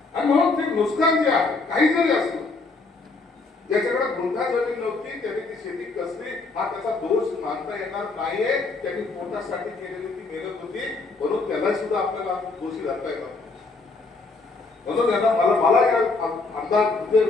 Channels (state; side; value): quieter; right; 3.8 dB